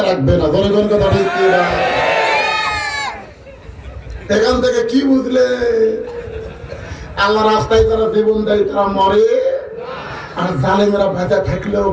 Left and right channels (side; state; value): both; identical; correlation 1.00